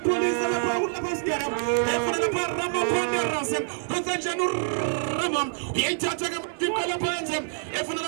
police lapha uSkara. Efuna lapha Ramaphandera. Kwenza njani uRama? Uyalithatha ke manje phansi. Efuna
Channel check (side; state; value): left; silent; digital silence